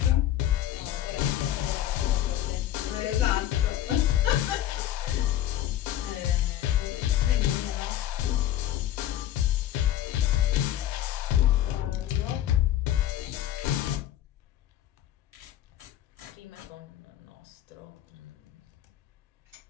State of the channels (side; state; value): right; quieter; 12.3 dB